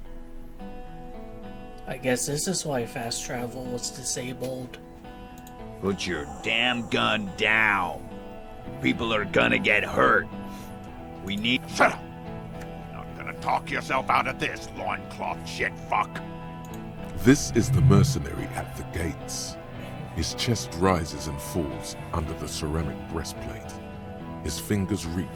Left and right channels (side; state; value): both; identical; correlation 1.00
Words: I guess this is why fast travel was disabled. Put your damn gun down. People are gonna get hurt. We need... Shut up! Not gonna talk yourself out of this, loincloth shit fuck. This is the mercenary at the gates. His chest rises and falls under the ceramic breastplate. His fingers